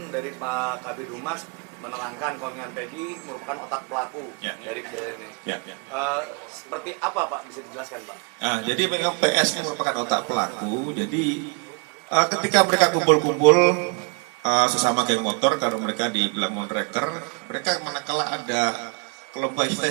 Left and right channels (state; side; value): quieter; left; 36.1 dB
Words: dari Pak Kabid Humas menerangkan kalau dengan Peggy merupakan otak pelaku dari kejadian ini. Seperti apa Pak? Bisa dijelaskan Pak? Jadi memang PS ini merupakan otak pelaku. Jadi ketika mereka kumpul-kumpul sesama geng motor, kalau mereka dibilang monreker, mereka manakala ada kelompok